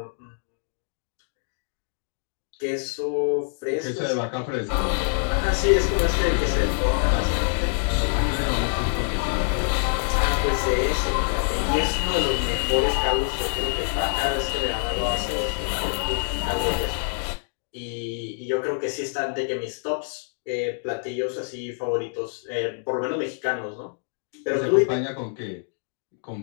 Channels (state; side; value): silent; right; digital silence